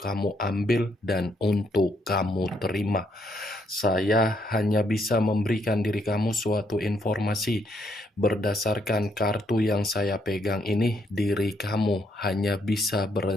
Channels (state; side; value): normal; both; correlation 0.74